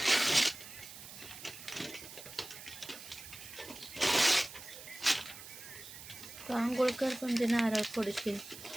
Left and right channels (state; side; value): noise; right; hiss, 14 dB below the sound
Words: तू आंघोळ कर पण ते नारळ फोडशील.